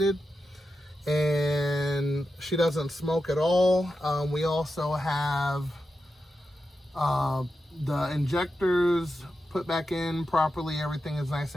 And she doesn't smoke at all. We also have the injectors put back in properly. Everything is nice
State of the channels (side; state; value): both; normal; correlation 0.89